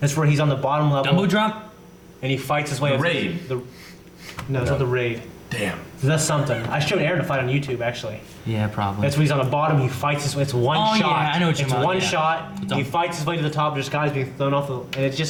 where he's on the bottom level. Dumbo drop? And he fights his way The up. Raid. No, it's not the Raid. Damn. That's something. I showed Aaron to fight on YouTube actually. Yeah, probably. That's when he's on the bottom. He fights his way. It's one Oh, shot. yeah, I know what you're It's about, one yeah. shot. It's He on- fights his way to the top. There's guys being thrown off, and it's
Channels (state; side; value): identical; both; correlation 1.00